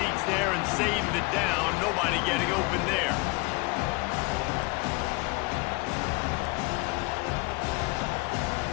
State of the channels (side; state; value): right; quieter; 26.5 dB